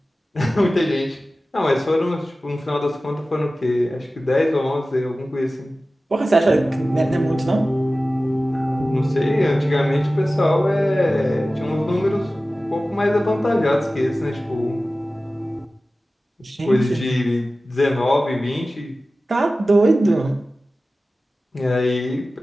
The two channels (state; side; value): normal; both; correlation 0.96